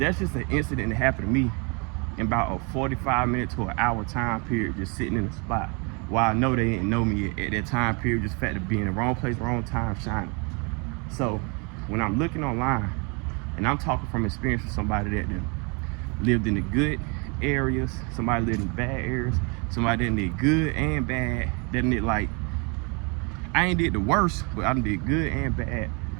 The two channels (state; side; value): quieter; left; 32.5 dB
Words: just an incident that happened to me in about a 45-minute to an hour time period, just sitting in a spot. While I know they didn't know me at that time period, just the fact of being in the wrong place, wrong time, shining. So when I'm looking online, and I'm talking from experience with somebody that lived in the good areas, somebody lived in bad areas, somebody that did good and bad, that did like, I ain't did the worst, but I did good and bad